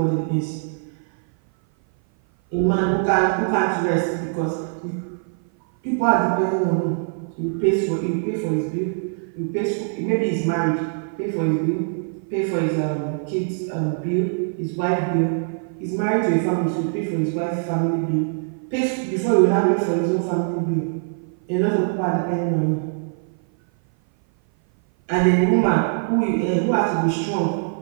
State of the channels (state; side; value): silent; left; 57 dB below the other